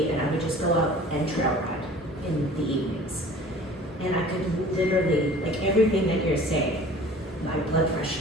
and I would just go out and trail ride in the evenings. And I could literally, like everything that you're saying, my blood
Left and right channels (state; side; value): normal; both; correlation 0.45